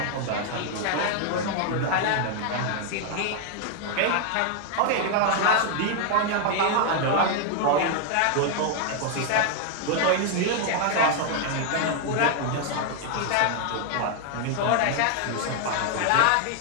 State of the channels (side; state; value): both; different; correlation 0.00